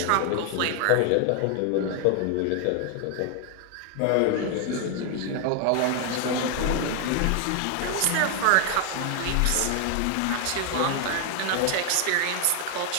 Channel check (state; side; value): different; both; correlation 0.00